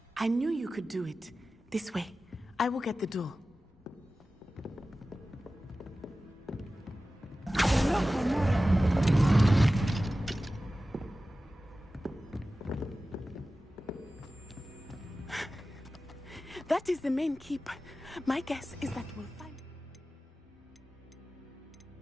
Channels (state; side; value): normal; both; correlation 0.95